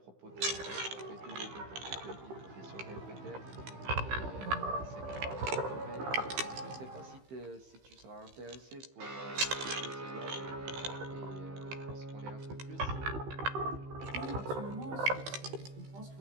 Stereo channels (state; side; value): late; left; 15 ms